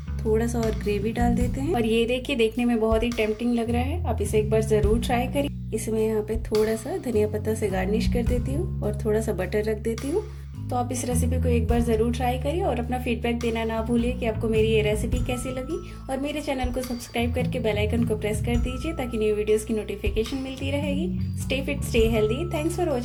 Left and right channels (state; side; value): identical; both; correlation 1.00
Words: थोड़ा सा और ग्रेवी डाल देते हैं और ये देखिए देखने में बहुत ही टेम्पटिंग लग रहा है। आप इसे एक बार जरूर ट्राई करिए। इसमें यहाँ पे थोड़ा सा धनिया पत्ता से गार्निश कर देती हूँ और थोड़ा सा बटर रख देती हूँ। तो आप इस रेसिपी को एक बार ज़रूर ट्राई करिए और अपना फीडबैक देना ना भूलिए कि आपको मेरी ये रेसिपी कैसी लगी। और मेरे चैनल को सब्सक्राइब करके बेल आइकन को प्रेस कर दीजिए ताकि न्यू वीडियोस की नोटिफिकेशन मिलती रहेगी। Stay fit, stay healthy. Thanks for